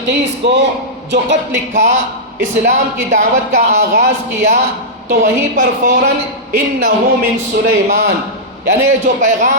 کو جو خط لکھا، اسلام کی دعوت کا آغاز کیا، تو وہیں پر فوراً انہ من سلیمان، یعنی جو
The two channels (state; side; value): normal; both; correlation -0.11